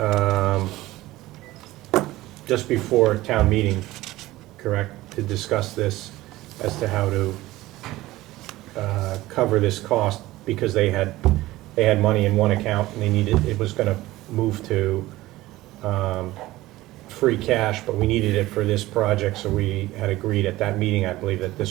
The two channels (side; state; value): left; quieter; 17.5 dB